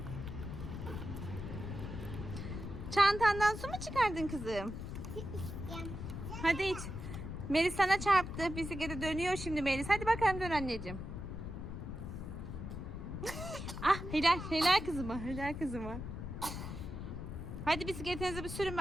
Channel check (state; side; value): noise; left; rumble, 7 dB below the sound